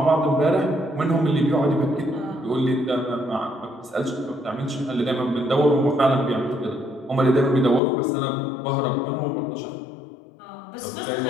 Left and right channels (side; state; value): right; drops out; at 7.8 s